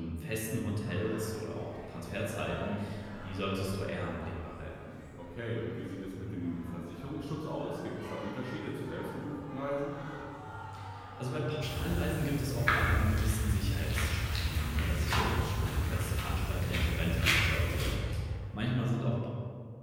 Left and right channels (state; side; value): identical; both; correlation 1.00